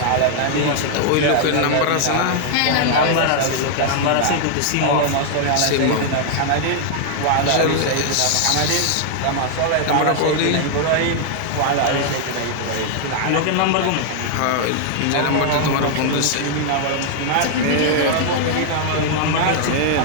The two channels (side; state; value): both; different; correlation 0.00